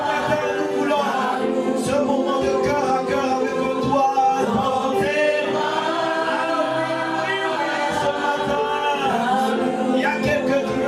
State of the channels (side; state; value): both; identical; correlation 1.00